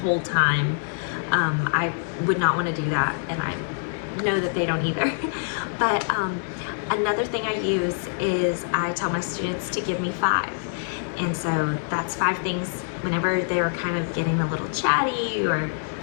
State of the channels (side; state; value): right; silent; digital silence